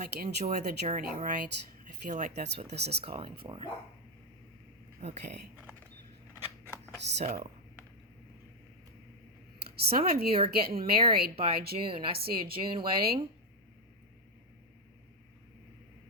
enjoy the journey, right? I feel like that's what this is calling for. Okay, so some of you are getting married by June. I see a June wedding.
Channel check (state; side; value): normal; both; correlation 0.02